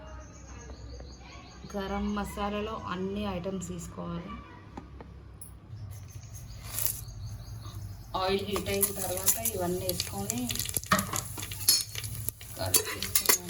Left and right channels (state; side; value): identical; both; correlation 1.00